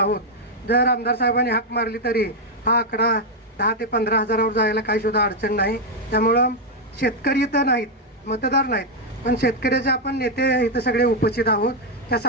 जर आमदार साहेबांनी हाक मारली तरी हा आकडा 10 ते 15 हजारावर जायला काही सुद्धा अडचण नाही. त्यामुळं शेतकरी तर नाहीत, मतदार नाहीत, पण शेतकऱ्याचे आपण नेते इथं सगळे उपस्थित आहोत. त्या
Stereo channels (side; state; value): both; normal; correlation 0.01